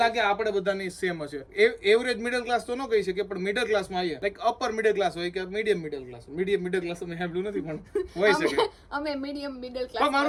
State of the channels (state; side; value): identical; both; correlation 1.00